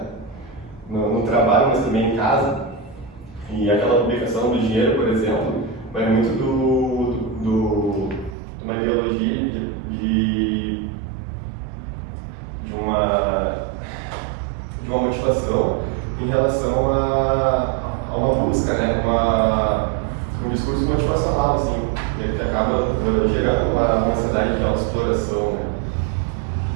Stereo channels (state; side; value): drops out; left; at 8.3 s